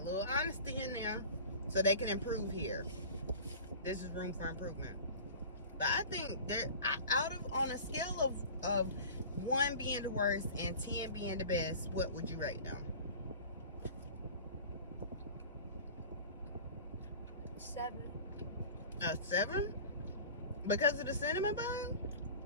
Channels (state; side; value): inverted; both; correlation -0.39